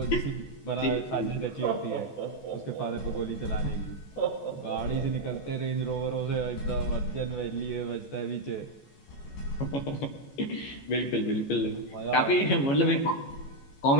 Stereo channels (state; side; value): late; right; 15 ms